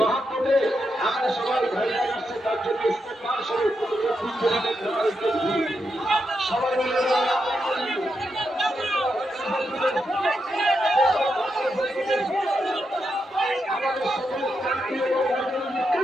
আমরা সবাই ভাইরা আসছে, তার জন্য ইস্তেকবার স্বরূপ সবাই মিলে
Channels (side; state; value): both; normal; correlation 0.84